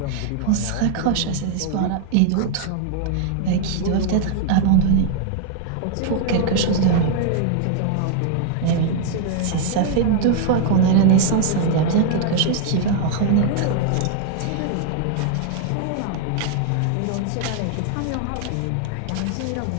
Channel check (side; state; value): both; different; correlation 0.00